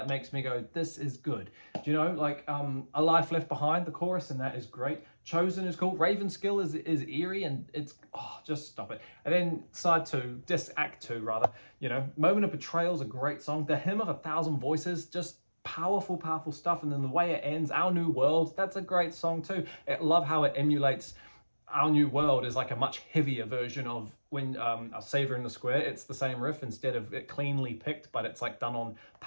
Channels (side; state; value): both; inverted; correlation -1.00